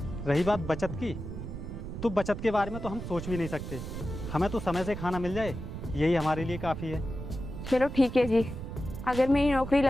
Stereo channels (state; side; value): noise; right; rumble, 8 dB below the sound